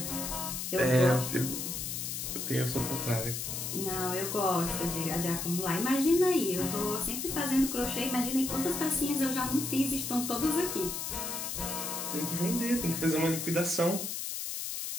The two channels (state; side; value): noise; left; hiss, 4 dB below the sound